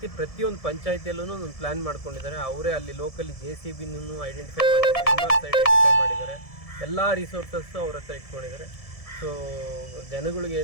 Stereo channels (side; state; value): right; late; 1.7 ms